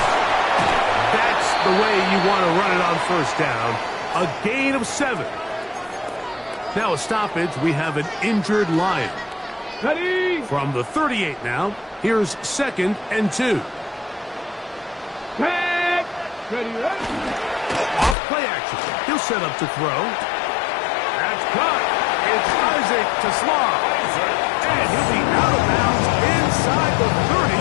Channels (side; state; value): right; drops out; at 18.2 s